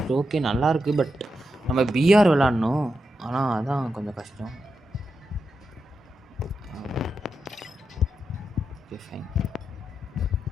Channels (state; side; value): normal; both; correlation 0.87